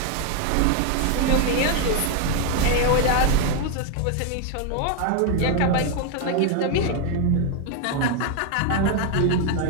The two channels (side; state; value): both; different; correlation 0.01